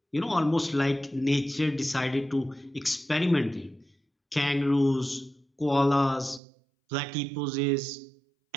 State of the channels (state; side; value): drops out; left; at 6.4 s